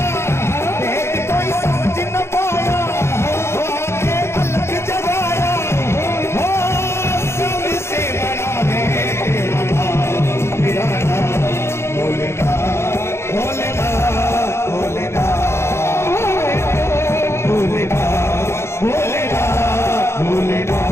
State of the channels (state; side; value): late; right; 0.13 ms